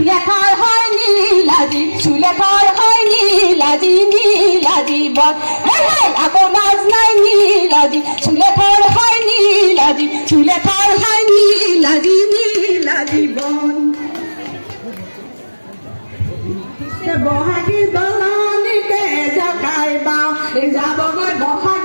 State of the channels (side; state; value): both; inverted; correlation -1.00